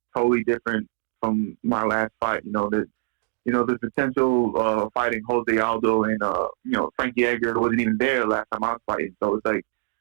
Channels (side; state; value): left; silent; digital silence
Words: totally different from my last fight. You know, there's potential fighting Jose Aldo and Frankie Edgar wasn't even there last time I was fighting. So it's like